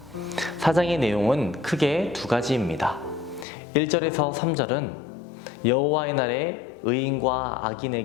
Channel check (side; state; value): right; drops out; at 3.5 s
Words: 4장의 내용은 크게 두 가지입니다. 1절에서 3절은 여호와의 날에 의인과